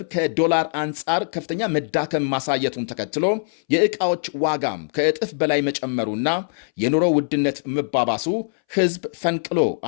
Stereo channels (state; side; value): silent; right; 62 dB below the other